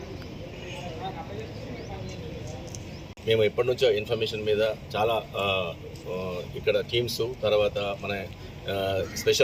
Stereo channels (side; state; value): both; identical; correlation 1.00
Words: మేము ఎప్పటి నుంచో ఇన్ఫర్మేషన్ మీద చాలా ఇక్కడ టీమ్స్, తర్వాత మన